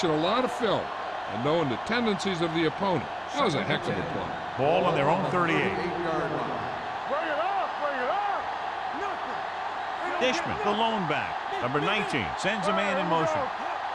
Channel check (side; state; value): both; identical; correlation 1.00